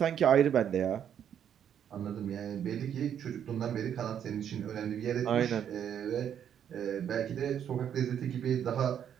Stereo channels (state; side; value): quieter; left; 9.1 dB